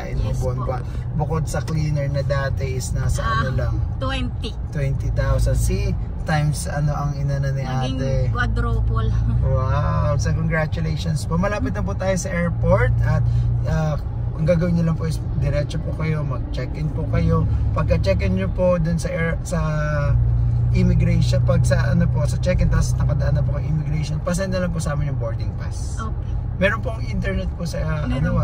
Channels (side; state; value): both; identical; correlation 1.00